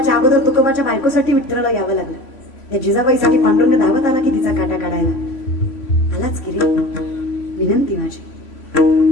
अगोदर तुकोबाच्या बायकोसाठी विठ्ठलाला यावं लागलं. त्या जिजाबाईसाठी पांडुरंग धावत आला की तिचा काटा काढायला. आलाच की रे. विनंती माझी,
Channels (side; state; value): right; late; 3.0 ms